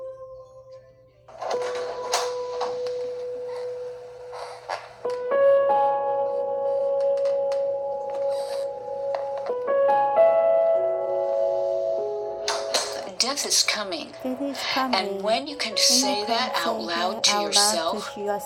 death is coming. Death is coming. And when you can say that out loud to yourself,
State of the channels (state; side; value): identical; both; correlation 1.00